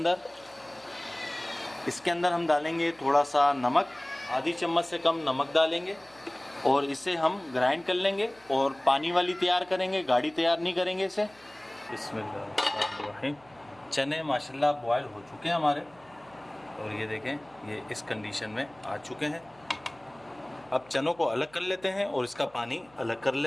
इसके अंदर हम डालेंगे थोड़ा सा नमक, आधी चम्मच से कम नमक डालेंगे, और इसे हम ग्राइंड कर लेंगे। और पानी वाली तैयार करेंगे, गाढ़ी तैयार नहीं करेंगे इसे। बिस्मिल्लाह। चने माशाल्लाह बॉयल हो चुके हैं हमारे, और ये देखें ये इस कंडीशन में आ चुके हैं। अब चनों को अलग कर लेते हैं और इसका पानी अलग कर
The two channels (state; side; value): noise; right; hum, 28 dB below the sound